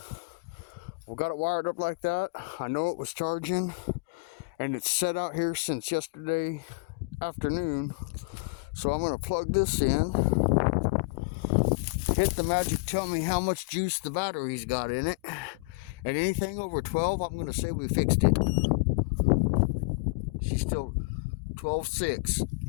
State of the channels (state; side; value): quieter; right; 31.4 dB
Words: we got it wired up like that. I know it was charging, and it's set out here since yesterday afternoon. So I'm going to plug this in, hit the magic, tell me how much juice the battery's got in it, and anything over 12, I'm going to say we fixed it. She's still 12.6,